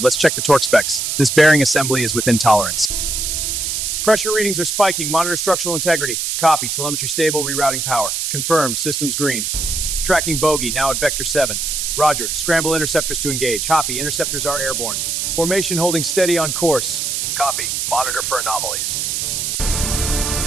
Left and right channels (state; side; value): noise; right; hiss, 1 dB below the sound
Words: Let's check the torque specs. This bearing assembly is within tolerance. Pressure readings are spiking. Monitor structural integrity. Copy. Telemetry stable. Rerouting power. Confirmed. Systems green. Tracking bogey. Now at vector 7. Roger. Scramble interceptors to engage. Copy. Interceptors are airborne. Formation holding steady on course. Copy. Monitor for anomalies.